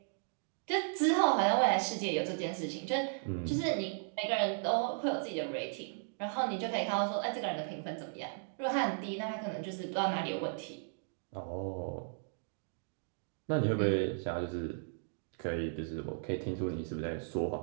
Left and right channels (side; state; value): left; silent; digital silence